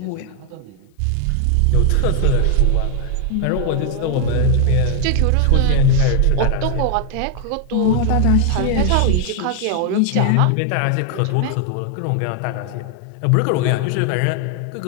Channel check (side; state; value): both; different; correlation 0.00